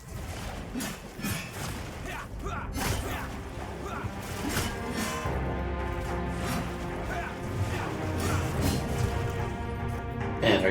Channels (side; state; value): both; identical; correlation 1.00